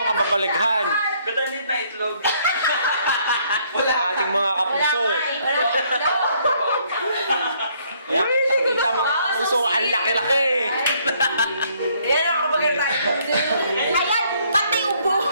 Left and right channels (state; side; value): inverted; both; correlation -0.66